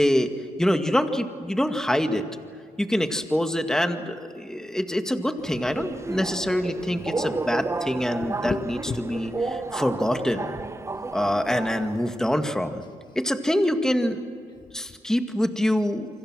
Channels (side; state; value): both; normal; correlation 0.91